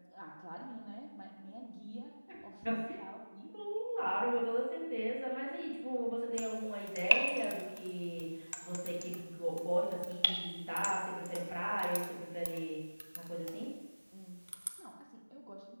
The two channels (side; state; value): both; inverted; correlation -1.00